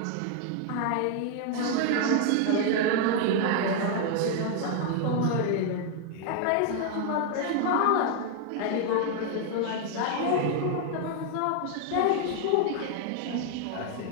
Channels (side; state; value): both; different; correlation 0.00